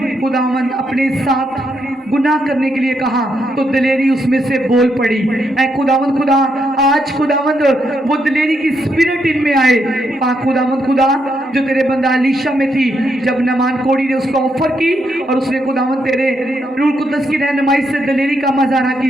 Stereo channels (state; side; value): normal; both; correlation 0.79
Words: खुदावंद अपने साथ गुनाह करने के लिए कहा तो दिलेरी उसमें से बोल पड़ी। ऐ खुदावंद खुदा, आज खुदावंद वो दिलेरी की स्पिरिट इनमें आए। पाक खुदावंद खुदा, जो तेरे बंदा अलीशा में थी, जब नमान कोड़ी ने उसको ऑफर की और उसने खुदावंद तेरे रूह कुद्दस की रहनुमाई से दिलेरी का मजारा